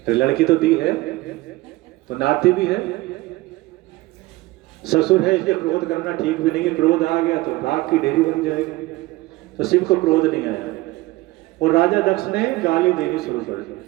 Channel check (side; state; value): left; quieter; 19.9 dB